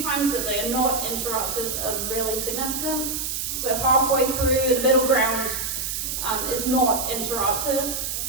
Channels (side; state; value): right; noise; hiss, 3 dB below the sound